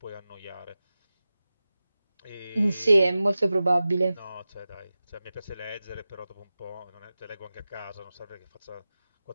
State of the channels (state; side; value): inverted; both; correlation -0.95